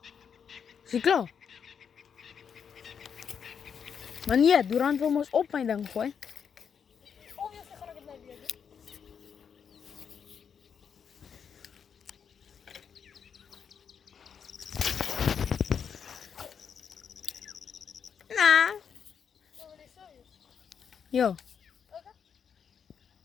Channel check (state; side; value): quieter; right; 7.2 dB